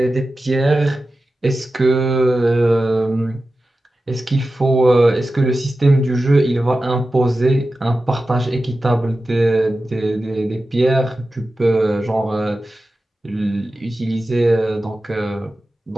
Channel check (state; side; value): normal; both; correlation 0.93